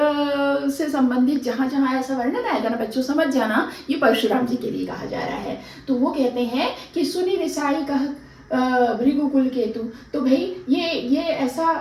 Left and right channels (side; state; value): both; identical; correlation 1.00